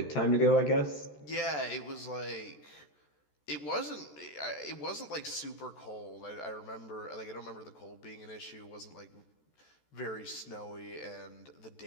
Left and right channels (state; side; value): late; right; 14 ms